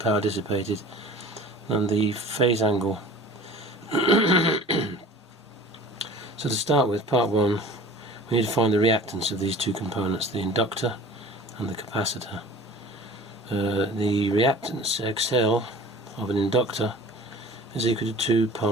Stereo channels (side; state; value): both; normal; correlation 0.43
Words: dissipated, and the phase angle. So to start with, part 1, we need to find the reactance of these two components, the inductor and the capacitor. The reactance XL of an inductor is equal to 2